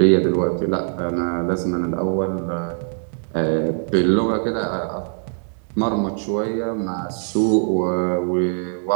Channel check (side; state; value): left; silent; digital silence